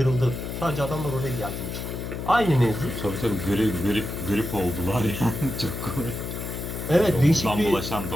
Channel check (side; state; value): left; noise; hum, 6 dB below the sound